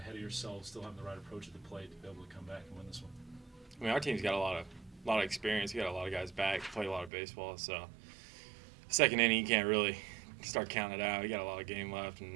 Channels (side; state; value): left; drops out; at 7.1 s